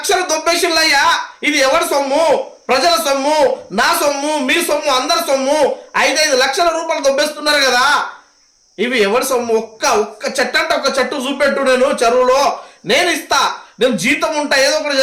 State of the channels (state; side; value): identical; both; correlation 1.00